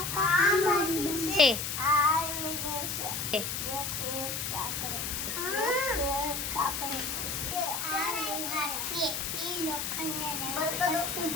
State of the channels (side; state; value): left; noise; hiss, 3 dB below the sound